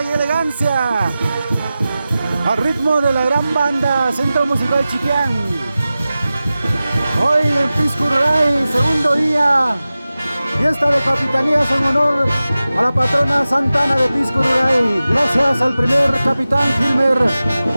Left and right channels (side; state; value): both; inverted; correlation -0.95